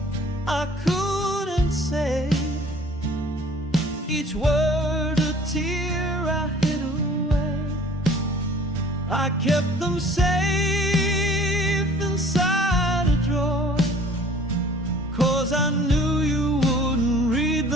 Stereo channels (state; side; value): normal; both; correlation 0.51